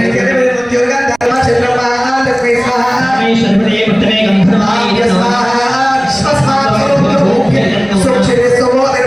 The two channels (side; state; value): right; noise; rumble, 28 dB below the sound